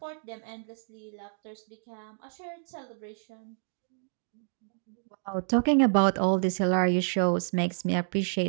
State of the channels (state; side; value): silent; left; digital silence